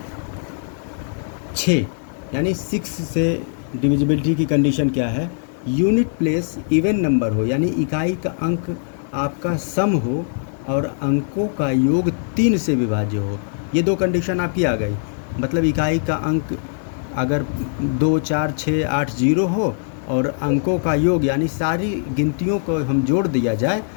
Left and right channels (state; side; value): silent; right; 59 dB below the other